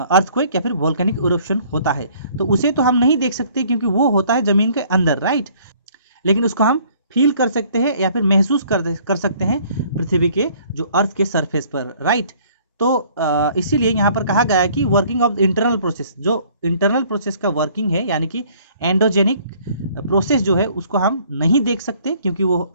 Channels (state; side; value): inverted; both; correlation -0.58